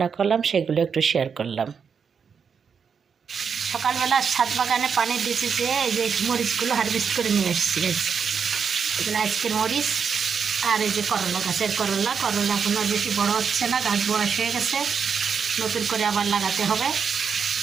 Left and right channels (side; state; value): left; quieter; 6.4 dB